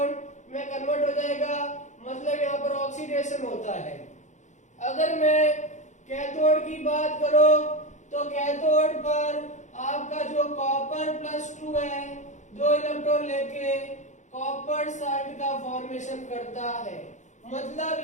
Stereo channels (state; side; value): late; right; 0.35 ms